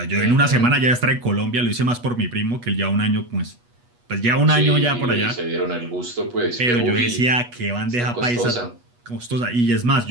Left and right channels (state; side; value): late; left; 8.3 ms